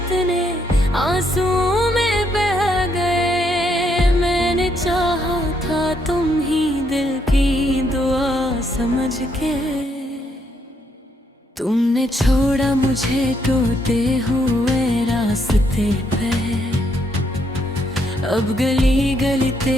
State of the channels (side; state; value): both; normal; correlation 0.74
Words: आंसुओं में बह गए। मैंने चाहा था तुम ही दिल की दुआ समझ के, तुमने छोड़ा मुझे टूटे हुए रास्ते पे। अब गली गली